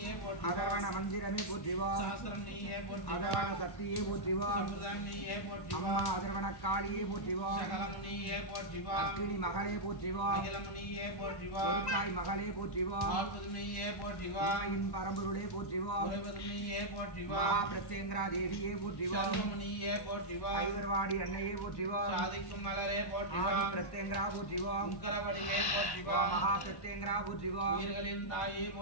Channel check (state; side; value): late; right; 1.1 ms